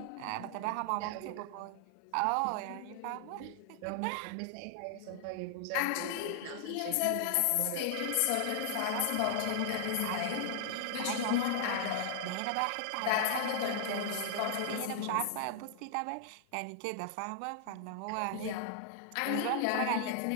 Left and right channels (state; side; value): different; both; correlation 0.00